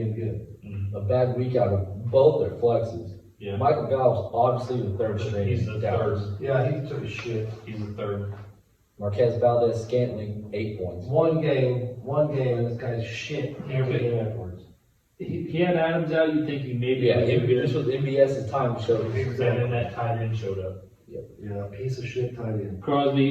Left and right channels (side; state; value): both; identical; correlation 1.00